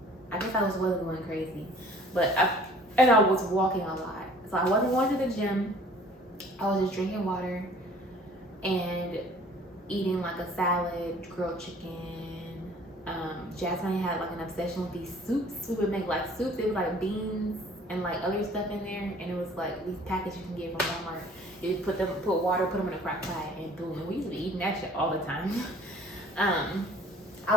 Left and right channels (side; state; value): both; normal; correlation 0.52